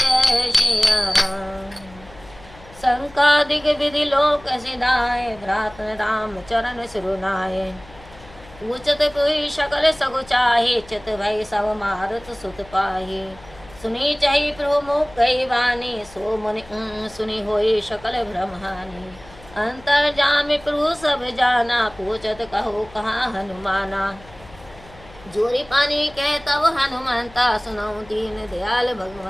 श्रिया राम। संकादिक विधि लोक सिधाए, भ्रात राम चरण सिरुनाए। पूछत कोई सकल सगु चाहे, चित भय सब मारुत सुत पाहे। सुनी चही प्रभु मुख कही वाणी, सो मुनि सुनी होई सकल ब्रह्मानी। अंतर जाम प्रभु सब जाना, पूछत कहो कहाँ हनुमाना। जोरी पानी कह तब हनुमंता, सुनाऊं दीन दयाल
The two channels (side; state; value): left; noise; hum, 22 dB below the sound